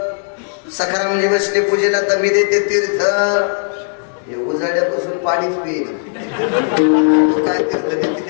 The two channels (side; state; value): right; silent; 67 dB below the other